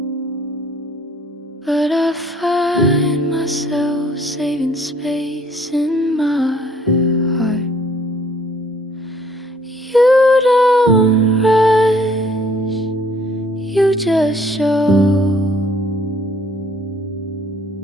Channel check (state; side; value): normal; both; correlation 0.60